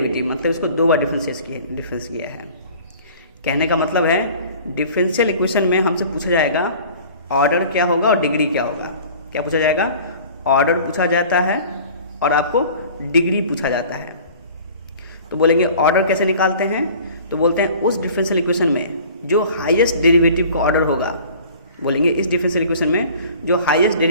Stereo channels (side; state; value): both; inverted; correlation -0.46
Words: मतलब इसको 2 बार डिफरेंस किया है। कहने का मतलब है डिफरेंशियल इक्वेशन में हमसे पूछा जाएगा ऑर्डर क्या होगा और डिग्री क्या होगा। क्या पूछा जाएगा, ऑर्डर पूछा जाता है और आपको डिग्री पूछा जाता है। तो बोलेंगे ऑर्डर कैसे निकालते हैं, तो बोलते हैं उस डिफरेंशियल इक्वेशन में जो हाईएस्ट डेरिवेटिव का ऑर्डर होगा, बोलेंगे इस डिफरेंशियल इक्वेशन में जो हाईएस्ट